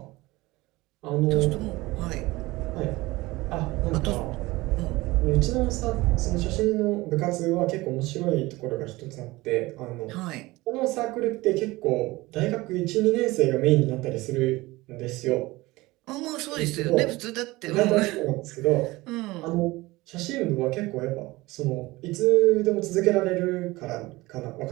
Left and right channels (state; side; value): quieter; left; 20.4 dB